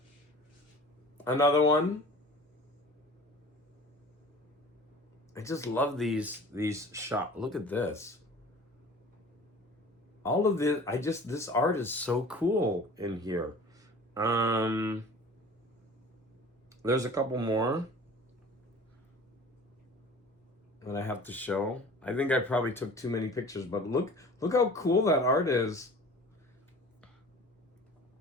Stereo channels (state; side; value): normal; both; correlation 0.43